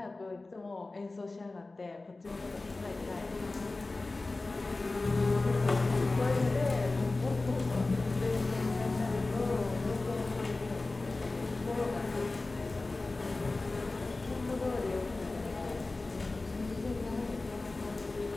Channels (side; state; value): right; quieter; 3.3 dB